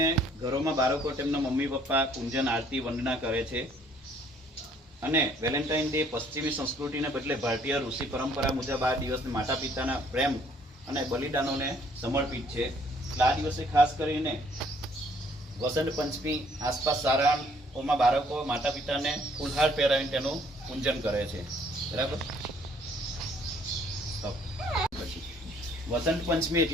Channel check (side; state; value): both; normal; correlation 0.62